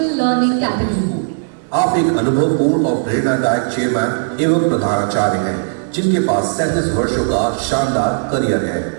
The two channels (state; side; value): silent; left; digital silence